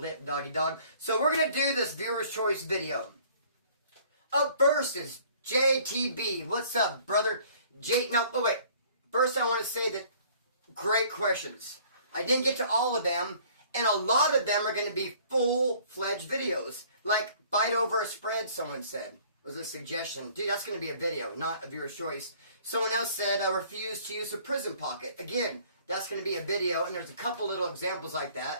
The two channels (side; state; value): both; inverted; correlation -0.55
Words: doggy dog. So we're going to do this viewer's choice video. Up first is JTB. What's up, brother? Wait. First, I want to say that great questions. I didn't get to all of them, and a lot of them are going to be full-fledged videos. Like, bite over a spread, someone said. Was a suggestion. Dude, that's going to be a video, not a viewer's choice. Someone else said, I refuse to use a prison pocket. Again, that's going to be a video, and there's a couple little examples like